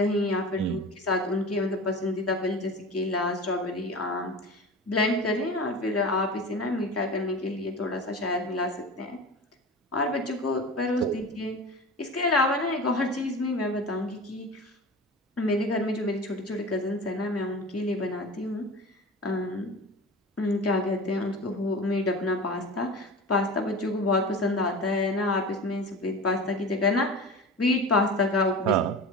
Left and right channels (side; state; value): both; normal; correlation 0.33